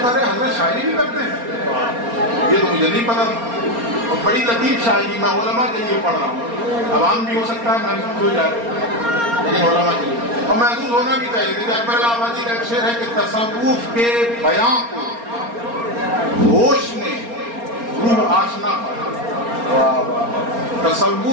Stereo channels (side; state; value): left; late; 4.3 ms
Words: حضرت شاعری بھی کرتے ہیں، یہ تو مجھے نہیں پتا تھا۔ اور بڑی لطیف شاعری، میں علماء کے لیے پڑھ رہا ہوں، عوام بھی ہو سکتا ہے محسوس ہو جائے، لیکن علماء کے لیے اور محسوس ہونا بھی چاہیے۔ دیکھیے اکبر الہ آبادی کا ایک شعر ہے کہ تصوف کے بیاں کو ہوش نے روح آشنا پایا،